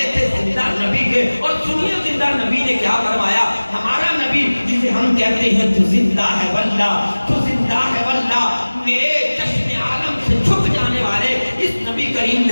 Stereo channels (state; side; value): inverted; both; correlation -1.00